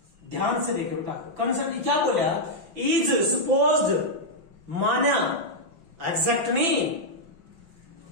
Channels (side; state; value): left; late; 5.7 ms